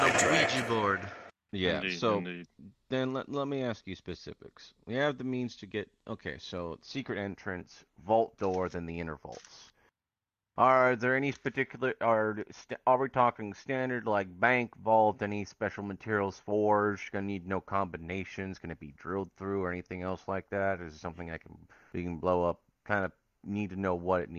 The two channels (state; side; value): identical; both; correlation 1.00